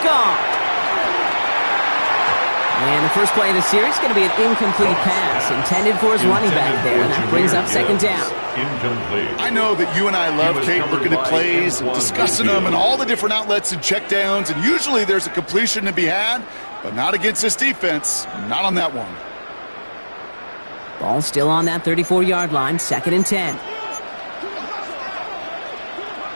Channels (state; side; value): inverted; both; correlation -1.00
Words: And the first play of the series is going to be an incomplete pass intended for his running back there, and that brings up second down. Incomplete. I know that you and I love, Kate, looking at plays and discussing them and all the different outlets and checkdowns, and usually there's a completion to be had, but not against this defense, not on that one. Ball still on that 34-yard line, second and 10.